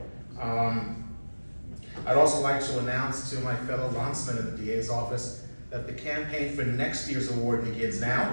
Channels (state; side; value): inverted; both; correlation -1.00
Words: I'd also like to announce to my fellow landsmen in the DA's office that the campaign for next year's award begins now.